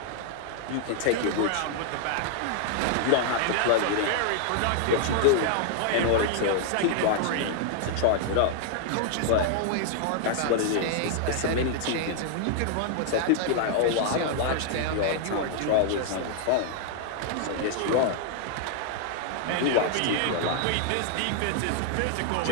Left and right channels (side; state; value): both; different; correlation 0.00